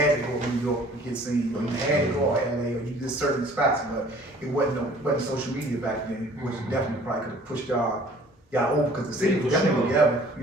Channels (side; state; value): both; normal; correlation 0.53